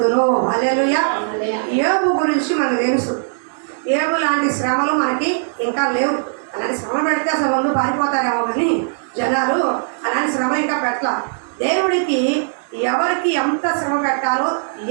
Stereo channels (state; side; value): silent; left; 67 dB below the other